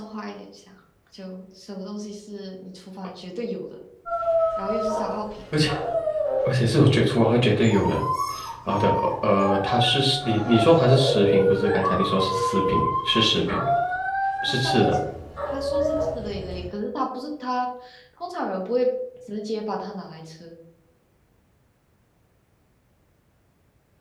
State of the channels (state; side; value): identical; both; correlation 1.00